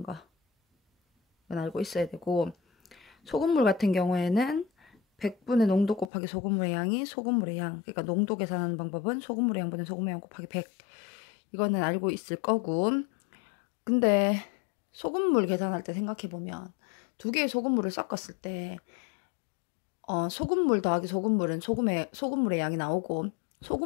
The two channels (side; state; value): right; drops out; at 6.1 s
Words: 거. 이건 알고 있어야 되고, 소금물 같은 경우에는 100분의 농도 곱하기 소금물의 양이 소금물의 양. 그러니까 농도 계산하는 방법은 소금물의 양분의 소금의 양 곱하기 100. 이거는 알고 있을 거고. 근데 소금물 계산할 때 생각해보면 두 개의 소금물을 섞었을 때 소금물 더하기 소금물은 소금물의 양이 나오고,